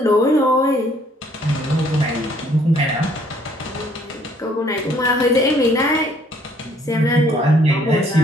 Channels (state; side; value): normal; both; correlation 0.62